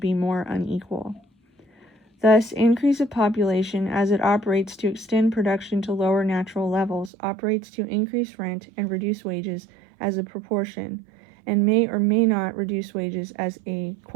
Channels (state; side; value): drops out; left; at 7.1 s